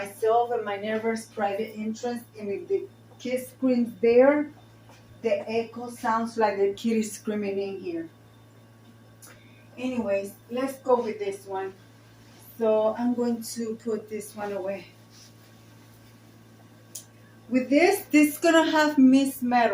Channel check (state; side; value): identical; both; correlation 1.00